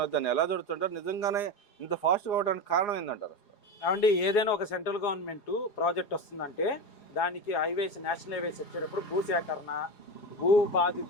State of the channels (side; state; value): right; late; 4.8 ms